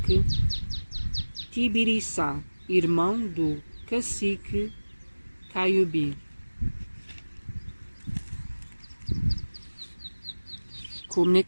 Tibiriçá, irmão do cacique Caiubi.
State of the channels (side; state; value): both; inverted; correlation -1.00